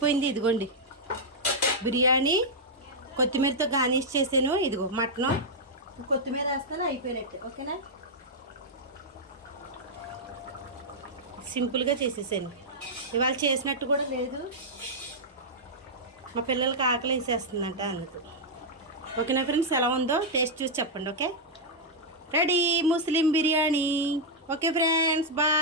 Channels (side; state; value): both; normal; correlation -0.05